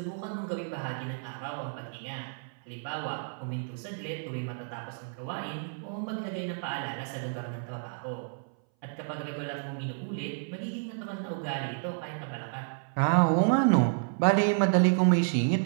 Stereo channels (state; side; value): silent; left; 57 dB below the other